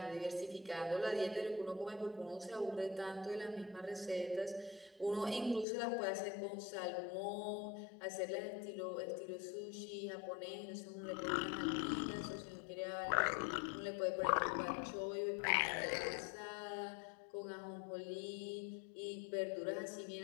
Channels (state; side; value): drops out; right; at 5.7 s